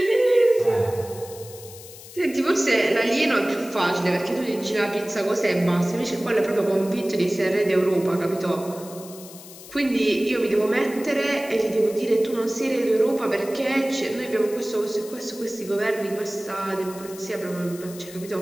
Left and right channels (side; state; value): left; noise; hiss, 17 dB below the sound